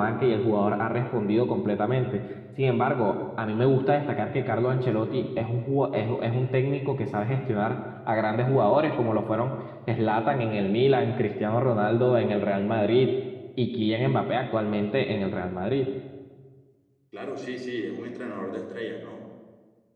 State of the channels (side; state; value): both; identical; correlation 1.00